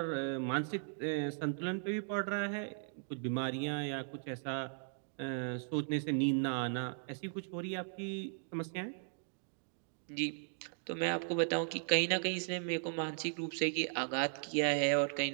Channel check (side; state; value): left; silent; digital silence